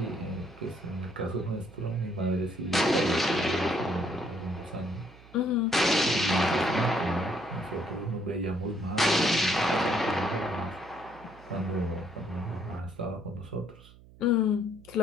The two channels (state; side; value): noise; right; hum, 22 dB below the sound